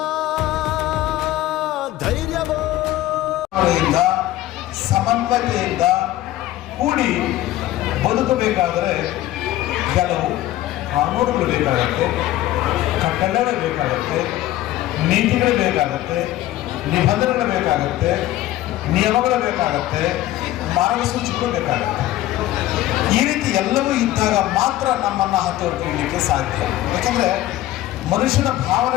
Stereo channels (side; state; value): right; quieter; 15.0 dB